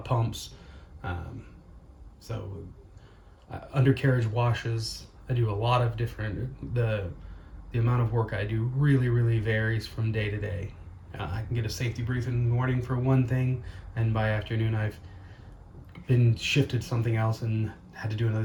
pumps. So undercarriage washes. I do a lot of different, the amount of work I do really varies from day to day. I can get a safety brief in the morning for one thing, and by afternoon I've been shifted something else and had to do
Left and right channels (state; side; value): identical; both; correlation 1.00